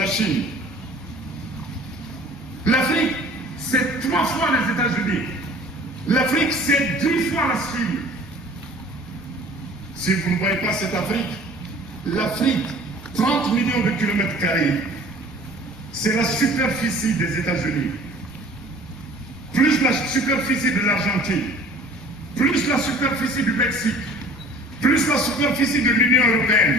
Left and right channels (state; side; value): normal; both; correlation 0.48